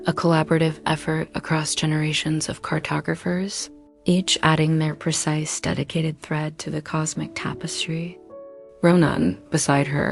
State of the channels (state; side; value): identical; both; correlation 1.00